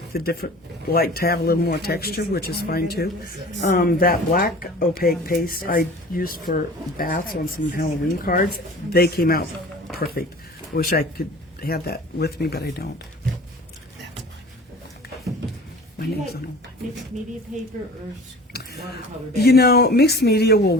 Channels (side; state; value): both; normal; correlation 0.42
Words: to have a little more texture, which is fine too. That black opaque paste I used for bats on some Halloween cards, they came out perfect. I wish I could have that with me, but I don't. That's fine. My name's on them. Mixed media paper or watercolor? You know, mixed media will